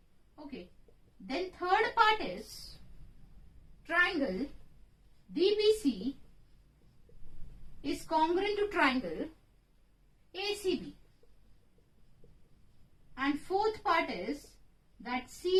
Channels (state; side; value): identical; both; correlation 1.00